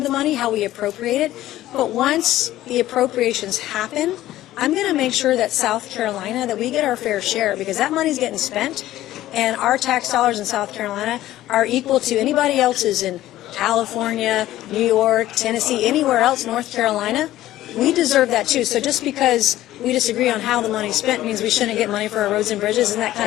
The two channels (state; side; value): quieter; right; 14.5 dB